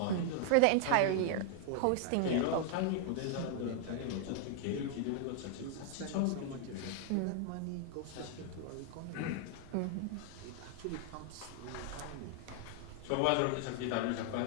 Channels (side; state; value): both; different; correlation 0.00